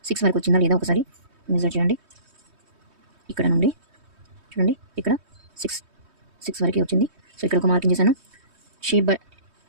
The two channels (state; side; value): late; left; 3.2 ms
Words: 6 వరకు వచ్చిందా లేదా ఒకసారి మెజర్ చేయండి. ఇక్కడ నుండి చూడండి, ఇక్కడ 6 వరకే వచ్చింది. సో ఇక్కడ ఒక మార్కింగ్ చేశాను. షేప్